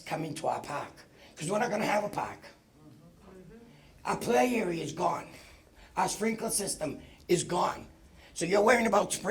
come into our park. Because we're not gonna have a park. Our play area is gone. Our sprinkler system is gone. So you're worrying about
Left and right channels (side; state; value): both; identical; correlation 1.00